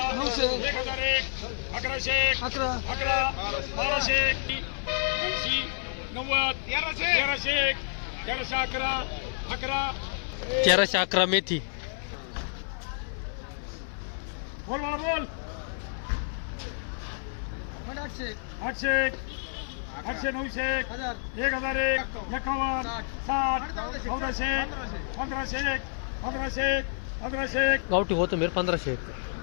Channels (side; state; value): right; silent; 58 dB below the other